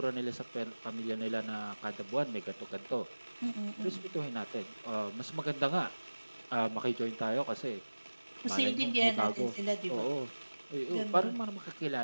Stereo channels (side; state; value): both; inverted; correlation -1.00